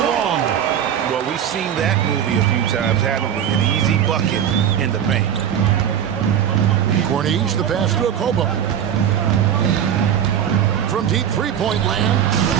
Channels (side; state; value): left; quieter; 9.4 dB